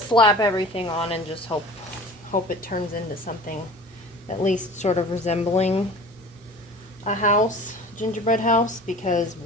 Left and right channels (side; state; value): both; normal; correlation 0.41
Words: slap everything on and just hope it turns into something at least sort of resembling a house, gingerbread house, because